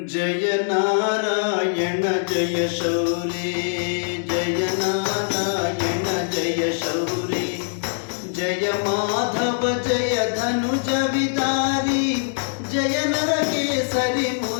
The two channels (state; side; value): silent; right; digital silence